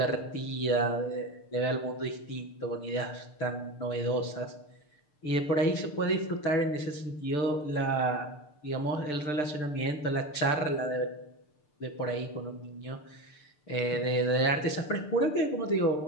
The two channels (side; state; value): right; late; 6.7 ms